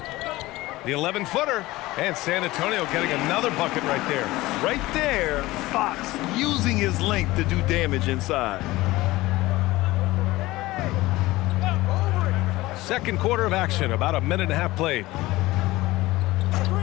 The 11-footer. And San Antonio getting another bucket right there. Right there, Fox using his length to do damage inside. Second quarter of action, about a minute and a half played.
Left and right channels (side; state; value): right; quieter; 18.8 dB